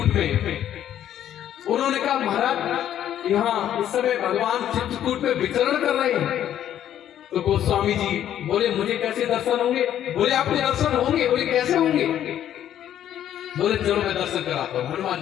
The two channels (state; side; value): quieter; right; 10.9 dB